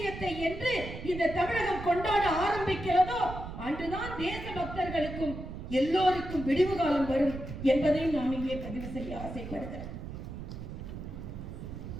என்று இந்த தமிழகம் கொண்டாட ஆரம்பிக்கிறதோ அன்றுதான் தேச பக்தர்களுக்கும் எல்லோருக்கும் விடிவு காலம் வரும் என்பதை நாம் இங்கே பதிவு செய்ய ஆசைப்படுகிறேன்.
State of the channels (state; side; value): noise; right; rumble, 9 dB below the sound